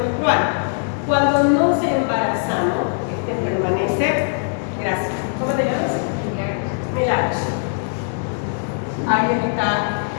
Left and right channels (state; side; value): silent; right; digital silence